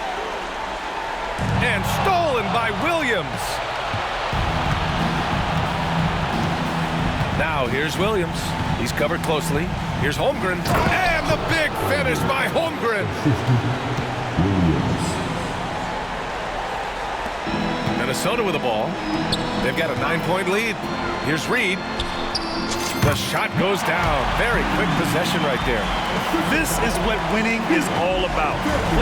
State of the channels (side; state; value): both; identical; correlation 1.00